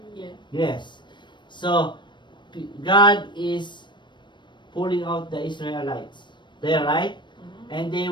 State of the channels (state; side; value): late; right; 0.22 ms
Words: Yeah. Yes. So God is pulling out the Israelites. There, right? And they